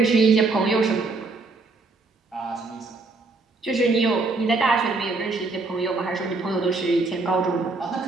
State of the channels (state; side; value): quieter; left; 3.6 dB